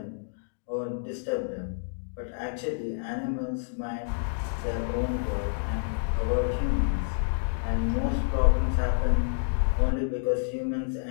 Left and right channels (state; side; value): silent; right; digital silence